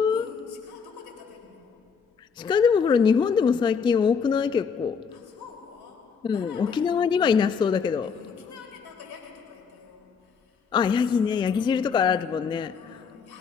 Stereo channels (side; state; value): right; quieter; 6.1 dB